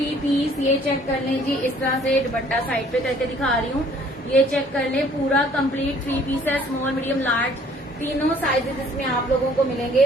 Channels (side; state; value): both; normal; correlation 0.57